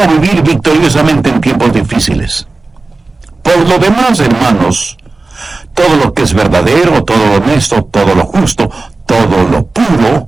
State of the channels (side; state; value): left; quieter; 3.5 dB